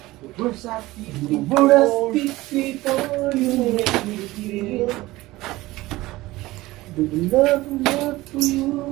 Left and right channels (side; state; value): left; quieter; 18.7 dB